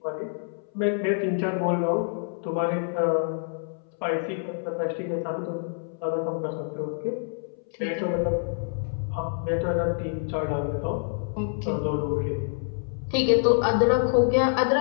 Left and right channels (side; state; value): right; silent; 60 dB below the other